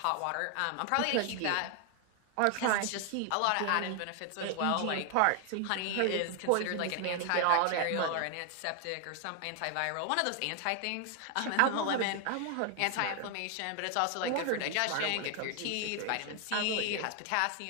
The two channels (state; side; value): different; both; correlation 0.00